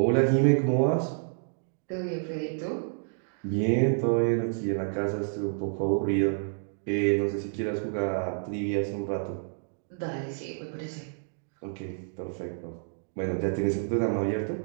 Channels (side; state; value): left; silent; digital silence